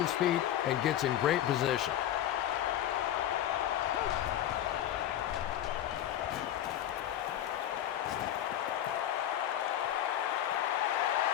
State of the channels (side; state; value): right; quieter; 11.7 dB